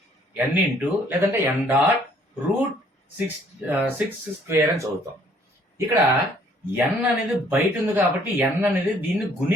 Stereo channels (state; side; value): normal; both; correlation 0.61